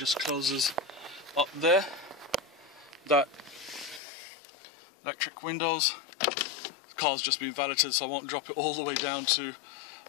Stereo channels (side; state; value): right; drops out; at 4.0 s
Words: closes up there. That electric windows car's just been valeted, so I won't drop it all the way down to